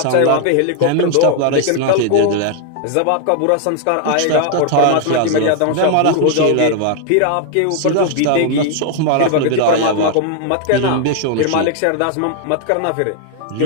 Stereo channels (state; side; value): different; both; correlation 0.00